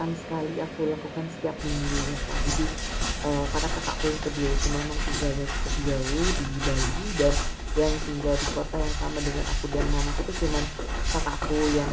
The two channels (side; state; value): both; identical; correlation 1.00